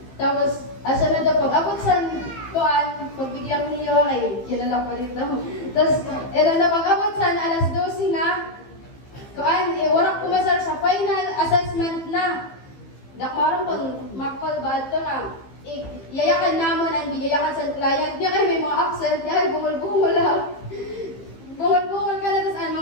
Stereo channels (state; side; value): late; right; 15 ms